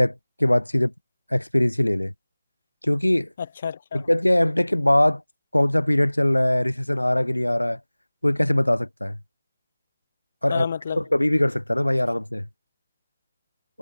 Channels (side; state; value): both; inverted; correlation -1.00